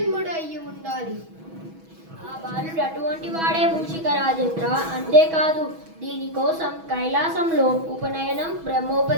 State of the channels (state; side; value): late; left; 6.2 ms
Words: అయి ఉండాలి. ఆ బాలుడు అటువంటి వాడే మూషిక రాజేంద్ర. అంతేకాదు, దీనికోసం కైలాసంలో ఉపనయనం